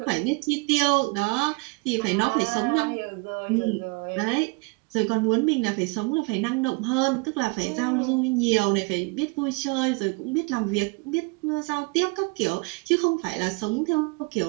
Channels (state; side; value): quieter; left; 28.5 dB